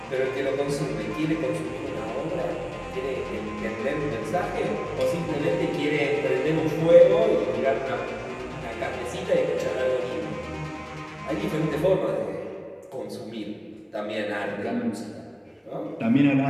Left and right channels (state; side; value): identical; both; correlation 1.00